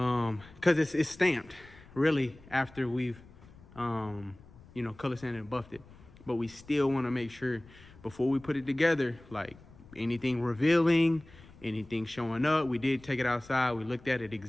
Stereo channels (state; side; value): noise; left; rumble, 22 dB below the sound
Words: it's stamped really after we've, you know, color sanded and buffed it. But we still want to make sure before we put it together, like anything revealing, anything showing up. We did take it outside. We looked at it,